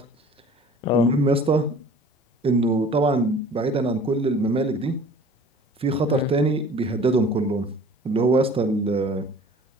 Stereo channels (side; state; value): both; normal; correlation 0.47